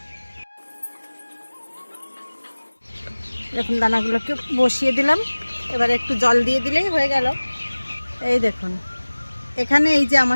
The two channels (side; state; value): both; inverted; correlation -1.00